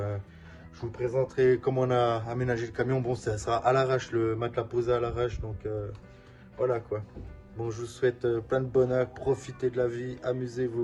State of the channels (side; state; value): both; identical; correlation 1.00